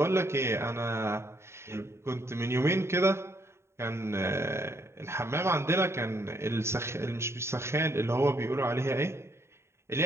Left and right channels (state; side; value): late; left; 0.13 ms